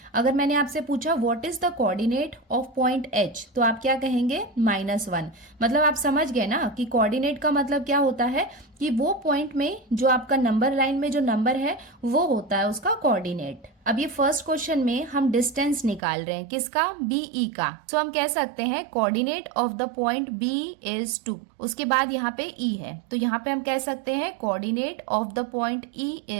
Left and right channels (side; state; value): left; drops out; at 16.0 s